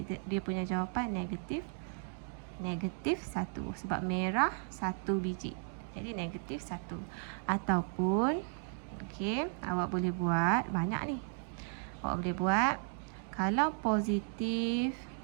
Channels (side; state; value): left; silent; 54 dB below the other